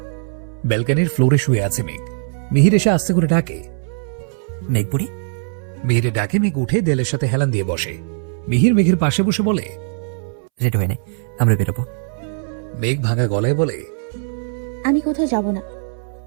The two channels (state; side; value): silent; left; 66 dB below the other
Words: ব্যালকনির ফ্লোরে শুয়ে আছে মেঘ। মিহির এসে আস্তে করে ডাকে, মেঘ বুড়ি। মিহিরের ডাকে মেঘ উঠে দেলের সাথে হেলান দিয়ে বসে। মিহির মেঘের পাশে বসে বলে, রেডি হয়ে নে, আমরা বেরোবো। মেঘ ভাঙা গলায় বলে, আমি কোথাও যাব না।